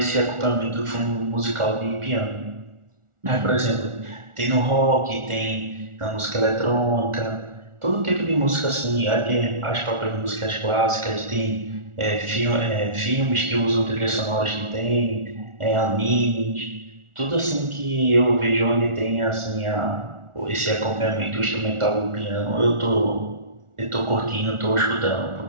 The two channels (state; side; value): late; left; 1.4 ms